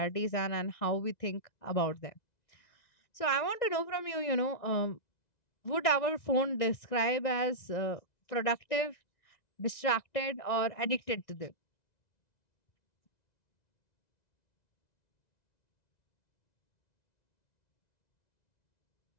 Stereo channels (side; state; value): right; late; 1.9 ms